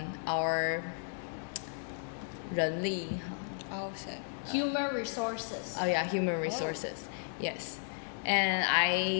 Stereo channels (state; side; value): silent; right; digital silence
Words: our 人力? Oh, so. Human resources. Oh yeah, human resources. Yes. And